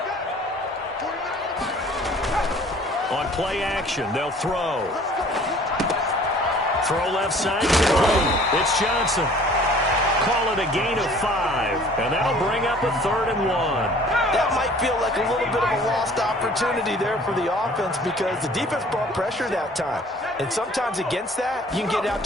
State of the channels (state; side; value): normal; both; correlation 0.51